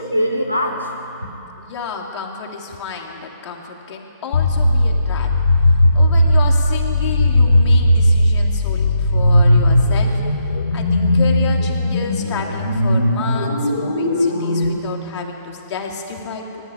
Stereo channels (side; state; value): both; inverted; correlation -0.80